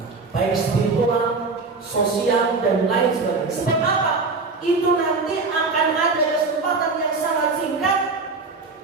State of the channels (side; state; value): left; quieter; 4.1 dB